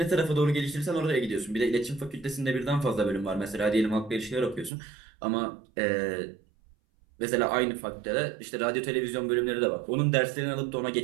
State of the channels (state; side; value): drops out; left; at 4.7 s